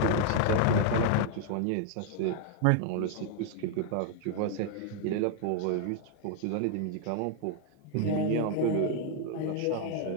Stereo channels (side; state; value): both; different; correlation 0.00